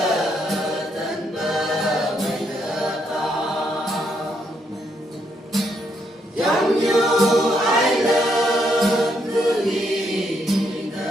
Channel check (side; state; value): both; normal; correlation 0.76